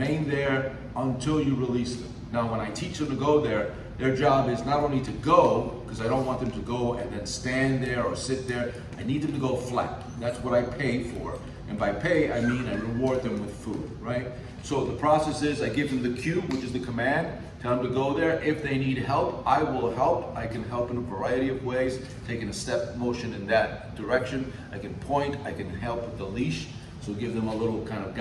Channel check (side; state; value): both; identical; correlation 1.00